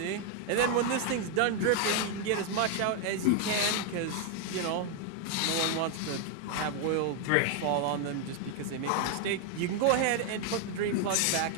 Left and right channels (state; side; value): different; both; correlation 0.00